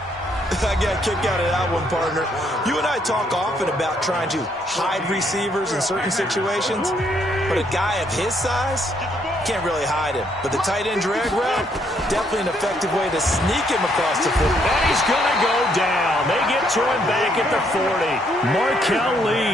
I got a kick out of that one, partner. You and I talk often about trying to hide receivers in certain situations, but a guy of his size can't really hide him. But the tight end drag route, definitely an effective way to sneak him across the field. And he's going to go down. They get to him back at the 40. Markel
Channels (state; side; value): normal; both; correlation 0.71